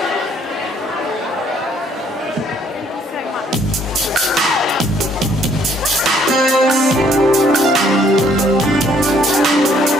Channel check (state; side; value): normal; both; correlation 0.64